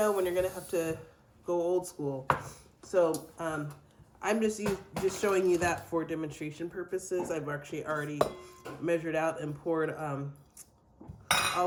when you're gonna have to go old school. So I'm just showing you that for demonstration purposes. I've actually already measured out and poured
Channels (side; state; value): both; identical; correlation 1.00